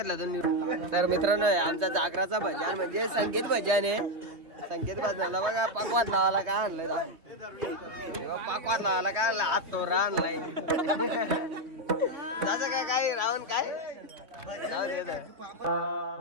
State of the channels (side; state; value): left; late; 3.0 ms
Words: दोन तर मित्रांनो आमचा जागराचा भजन म्हणजे संगीत भजन आहे संगीत भजनाला बघा पाकवात लावायला काय आणलंय पाकवात लावायला काय आणलं हात तोरा आणलाय त्याचं काय रावण काय